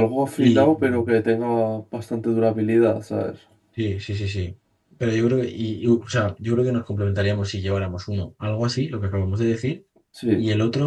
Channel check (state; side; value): identical; both; correlation 1.00